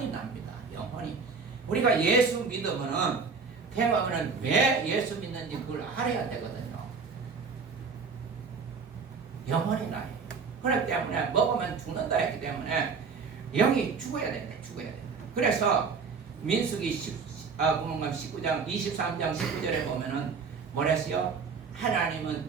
납니다. 영혼이. 우리가 예수 믿으면은 대박은 왜 예수 믿는지 그걸 알아야 되거든요. 영혼이 나요. 그렇기 때문에 먹으면 죽는다 했기 때문에 영이 죽어야 됩니다. 죽어야 됩니다. 그래서 민수기 19장 23장 19절에 보면은 뭐랬어요?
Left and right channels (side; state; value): left; quieter; 5.2 dB